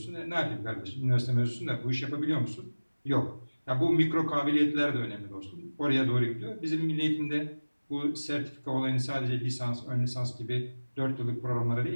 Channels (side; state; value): both; inverted; correlation -1.00